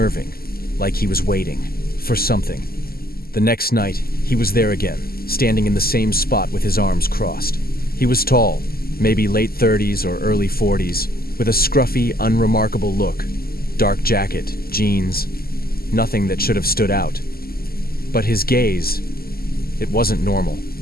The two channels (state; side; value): late; right; 0.44 ms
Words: like he was waiting for something. The next night, he was there again, standing in the same spot with his arms crossed. He was tall, maybe late 30s or early 40s, with a scruffy, unremarkable look. Dark jacket, jeans, nothing that should have stood out. But his gaze, it wasn't normal.